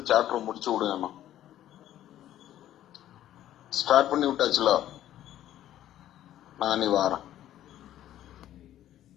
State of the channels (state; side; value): quieter; right; 12.5 dB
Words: சாப்டர் முடிச்சு விடுங்க. ஸ்டார்ட் பண்ணி விட்டாச்சுல, நானே வாரேன்.